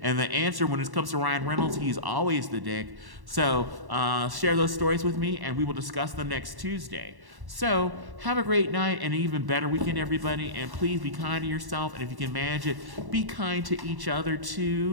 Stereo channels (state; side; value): late; left; 1.1 ms